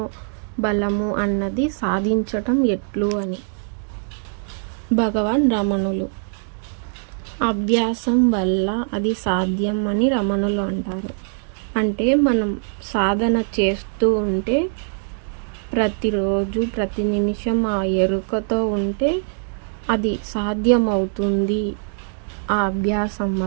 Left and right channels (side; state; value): left; silent; 62 dB below the other